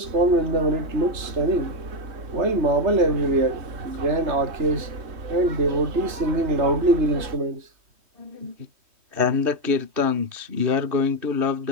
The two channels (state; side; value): late; left; 3.1 ms